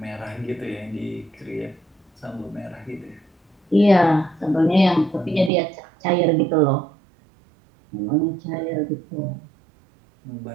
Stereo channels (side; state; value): left; drops out; at 5.5 s